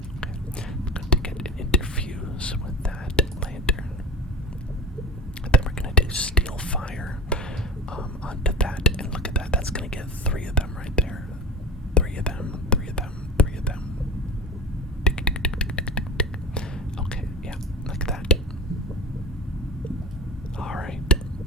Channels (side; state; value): both; normal; correlation 0.31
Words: I'm going to get an interfuse with that lantern. And then we're going to do steel fire onto that. And look at that. That's going to get 3 of them right there. 3 of them. 3 of them. 3 of them. Okay, yeah, like that. Alright,